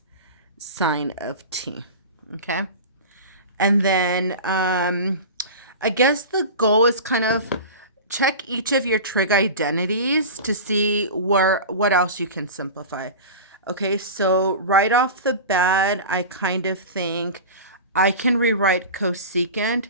sine of t, okay? And then I guess the goal is kind of check each of your trig identities to see what else you can simplify. Okay, so right off the bat, I kind of think I can rewrite cosecant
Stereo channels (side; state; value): both; inverted; correlation -0.30